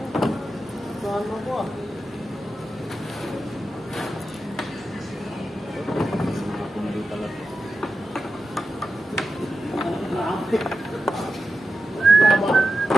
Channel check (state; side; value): normal; both; correlation 0.90